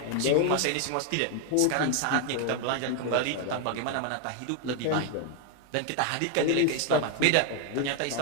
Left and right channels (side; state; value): both; different; correlation 0.01